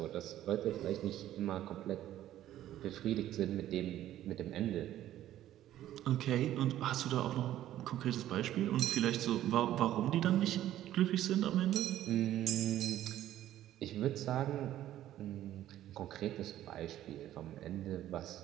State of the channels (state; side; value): quieter; left; 12.9 dB